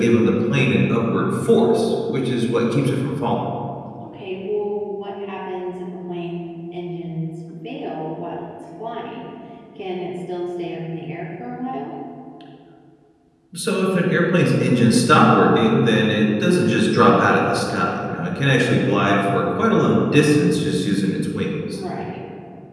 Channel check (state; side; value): identical; both; correlation 1.00